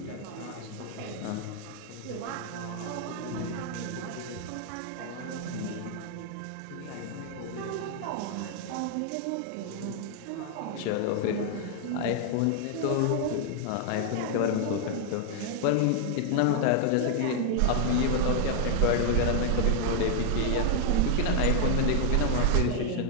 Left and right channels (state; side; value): different; both; correlation -0.01